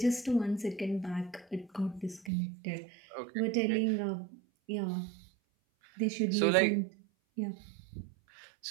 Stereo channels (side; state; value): left; drops out; at 2.3 s